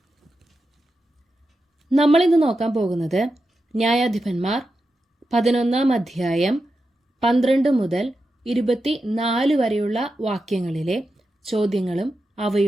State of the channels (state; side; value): normal; both; correlation 0.89